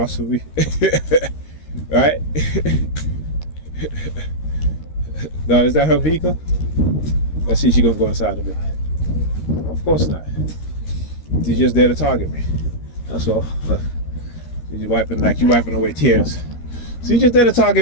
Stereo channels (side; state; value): right; late; 13 ms